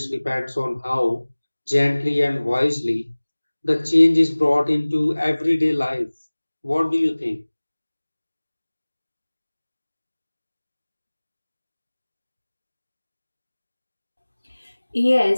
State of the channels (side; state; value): both; inverted; correlation -1.00